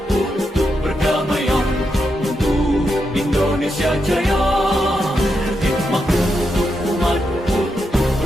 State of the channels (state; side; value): normal; both; correlation 0.84